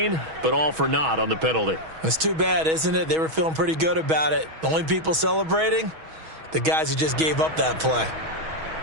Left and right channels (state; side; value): late; left; 6.3 ms